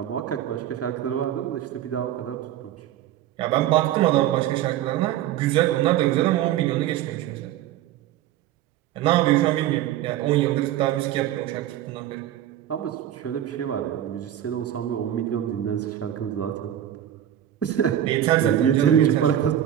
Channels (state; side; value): quieter; left; 11.8 dB